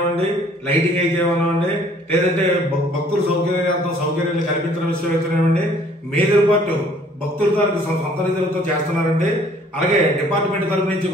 లైటింగ్ అయితేనేవ్వండి, లేదంటే భక్తుల సౌకర్యాలు కల్పించడం విషయం అయితేనేవ్వండి, మేజర్ పార్ట్ భక్తుల తాలూకు సొంత నిధులతో చేస్తున్నారండి. అలాగే డిపార్ట్మెంట్ తరఫు నుంచి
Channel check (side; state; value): both; normal; correlation 0.58